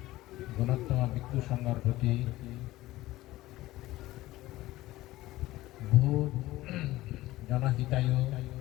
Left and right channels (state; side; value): quieter; right; 17.1 dB